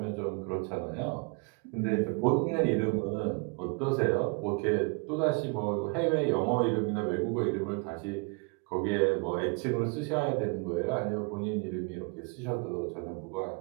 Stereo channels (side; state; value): left; quieter; 32.5 dB